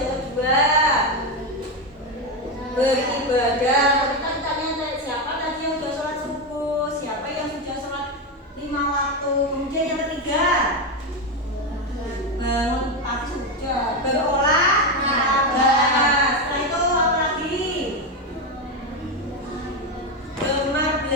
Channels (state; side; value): normal; both; correlation 0.11